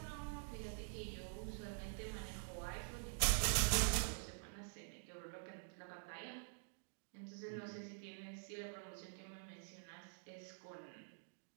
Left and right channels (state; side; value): silent; left; digital silence